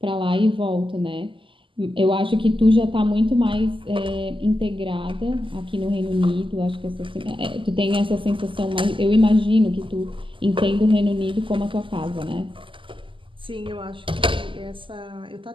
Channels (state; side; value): late; left; 0.25 ms